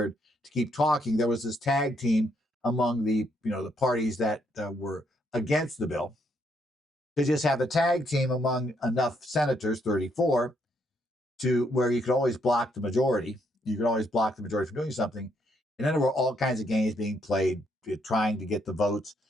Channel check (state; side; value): normal; both; correlation 0.74